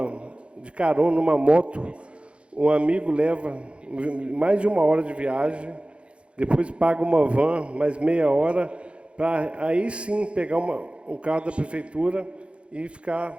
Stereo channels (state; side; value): late; left; 0.059 ms